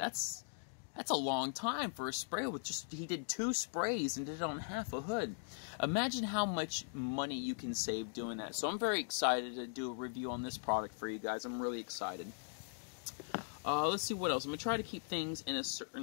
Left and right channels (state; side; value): silent; right; digital silence